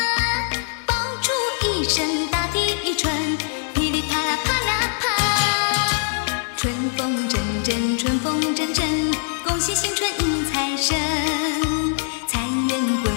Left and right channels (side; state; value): right; silent; digital silence